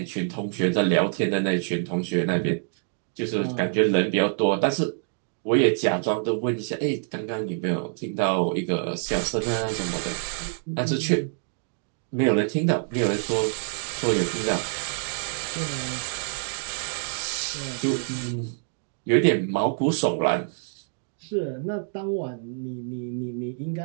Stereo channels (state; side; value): silent; left; digital silence